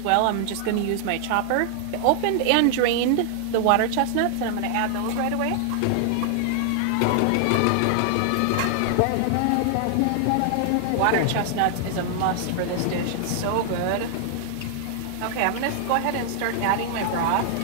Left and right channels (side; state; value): both; different; correlation 0.00